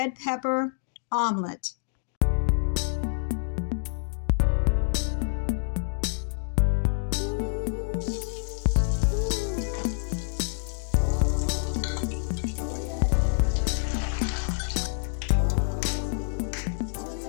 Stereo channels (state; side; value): silent; right; digital silence